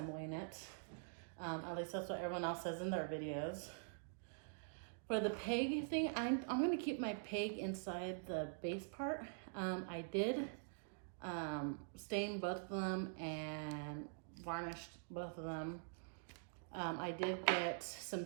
it. At least that's what everyone else says in their videos. For the peg thing, I'm going to keep my peg inside the base part. I did stain both of them and varnished both of them. I did get some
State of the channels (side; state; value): left; silent; digital silence